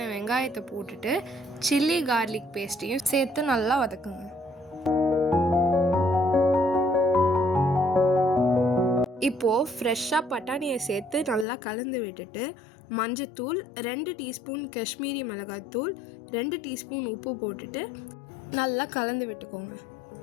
வெங்காயத்தை போட்டுட்டு சில்லி கார்லிக் பேஸ்ட்டையும் சேர்த்து நல்லா வதக்குங்க. இப்போது ஃப்ரெஷ்ஷாக பட்டாணியை சேர்த்து நல்லா கலந்து விட்டுட்டு மஞ்சத்தூள், 2 டீஸ்பூன் காஷ்மீரி மிளகாய்த்தூள், 2 டீஸ்பூன் உப்பு போட்டுட்டு நல்லா கலந்து விட்டுக்கோங்க.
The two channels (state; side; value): drops out; right; at 11.5 s